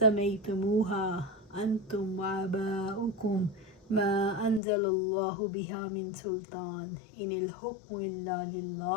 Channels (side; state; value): right; drops out; at 4.6 s